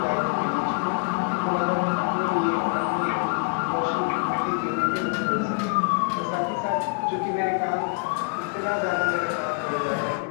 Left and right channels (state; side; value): quieter; right; 35.9 dB